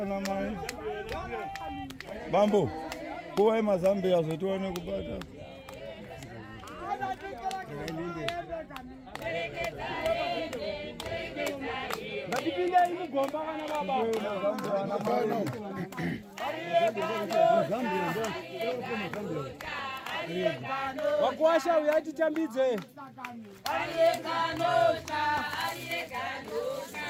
mai. Bambo. Kuwa mazambi azo tuone kupata. Ndipinda imugomba kana baba. Wakuasha uyati tambidze.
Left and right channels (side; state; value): both; identical; correlation 1.00